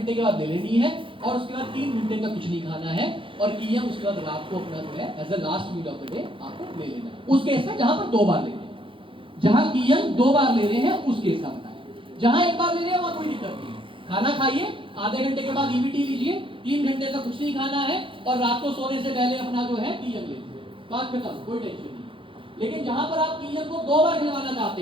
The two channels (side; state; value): left; late; 0.25 ms